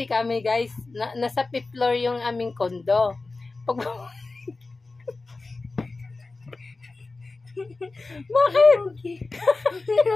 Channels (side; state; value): right; quieter; 3.6 dB